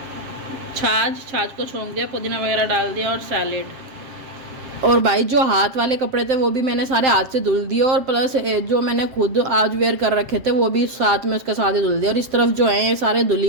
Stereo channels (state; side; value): late; left; 7.4 ms